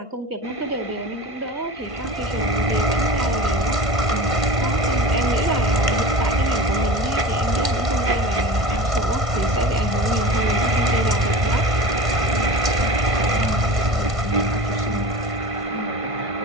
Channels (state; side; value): late; left; 1.5 ms